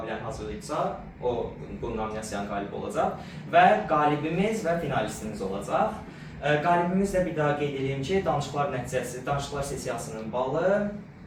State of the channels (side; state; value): both; identical; correlation 1.00